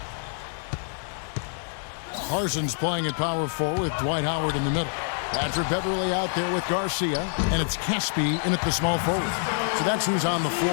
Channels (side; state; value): right; silent; 61 dB below the other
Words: Parsons playing at power forward with Dwight Howard in the middle. Patrick Beverly out there with Garcia, and it's Caspi in at the small forward. So that's who's on the